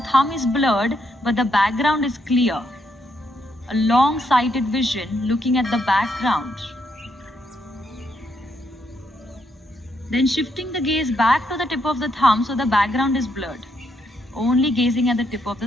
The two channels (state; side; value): normal; both; correlation 0.76